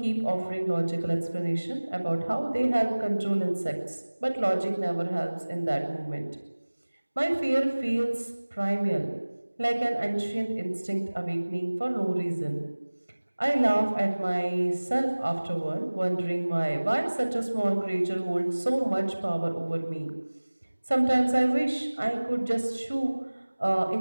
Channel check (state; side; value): inverted; both; correlation -1.00